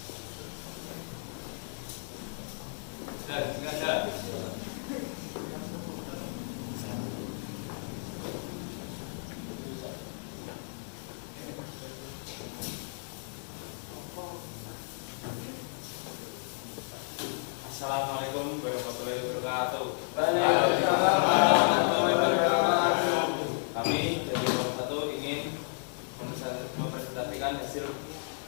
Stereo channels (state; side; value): silent; right; 56 dB below the other